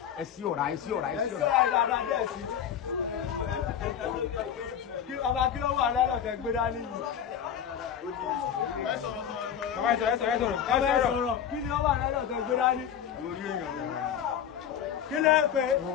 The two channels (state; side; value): quieter; right; 8.9 dB